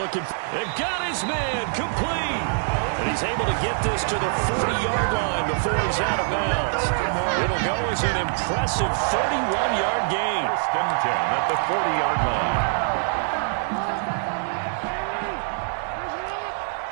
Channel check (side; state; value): left; silent; digital silence